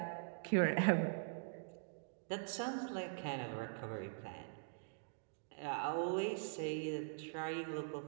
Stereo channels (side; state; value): left; silent; digital silence